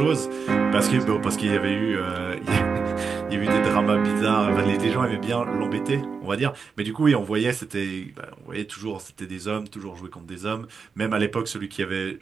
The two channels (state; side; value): quieter; left; 5.4 dB